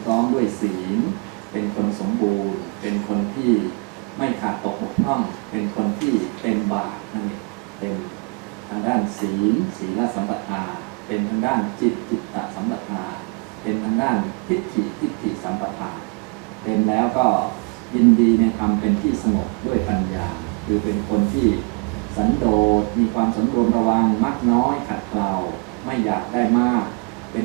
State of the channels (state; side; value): quieter; left; 33.1 dB